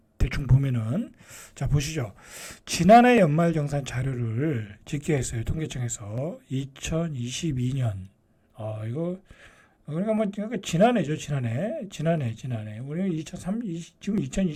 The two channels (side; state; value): both; identical; correlation 1.00